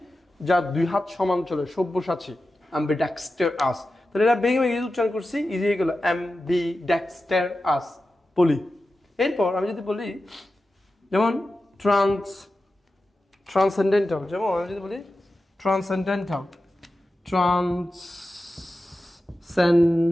যা 2 হাত সমান চলে, সব্যসাচী, ambidextrous। তাহলে এটা ভেঙে ভেঙে উচ্চারণ করছি, ইজি হয়ে গেল ambidextrous, পলি। এরপর আমি যদি বলি যেমন ট্রান্সেন্ডেন্টাল, যেমন আমি যদি বলি ট্রান্সেন্ডেন্টাল,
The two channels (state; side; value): normal; both; correlation 0.93